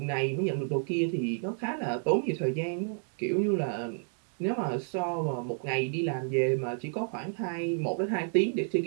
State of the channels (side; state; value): left; silent; 58 dB below the other